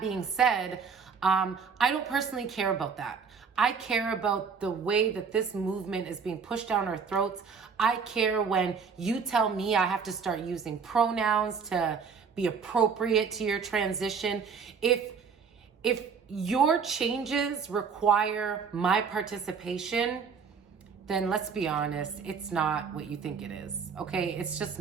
said, I don't personally care about that. I care about the way that this movement is being pushed down our throats. I care when you tell me I have to start using pronouns to be appropriate to your transition. If your changes require my participation, then let's be honest, it's not what you think it is, okay? It's just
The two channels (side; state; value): left; quieter; 5.9 dB